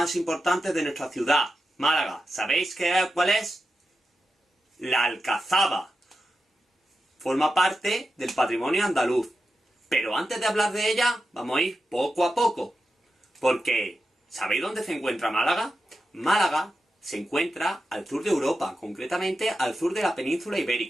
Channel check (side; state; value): both; normal; correlation 0.90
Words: importantes de nuestra ciudad, Málaga. ¿Sabéis cuál es? La Alcazaba. Forma parte del patrimonio andaluz. Pero antes de hablar de ella, vamos a ir poco a poco. Porque, ¿sabéis dónde se encuentra Málaga? Málaga se encuentra al sur de Europa, concretamente al sur de la península